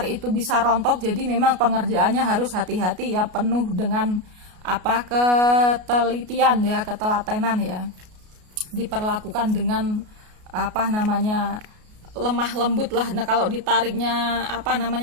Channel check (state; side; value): late; left; 33 ms